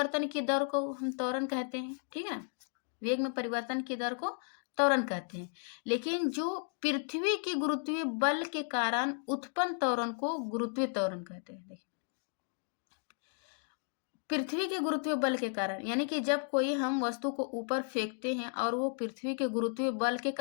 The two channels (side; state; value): right; silent; 55 dB below the other